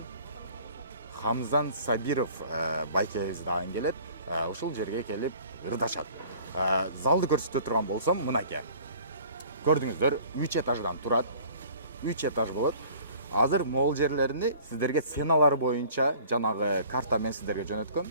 Хамзан Сабиров байкебиз дагы келет. Ушул жерге келип ырдашат. Залды көрсөтө турган болсом, мынакей. Көрдүңүздөр, 3 этаждан турат. 3 этаж болот. Азыр могул жерлерини сиздерге сценалар боюнча жанагы карта мен сиздерге жөнөткөм.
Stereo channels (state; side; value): inverted; both; correlation -0.49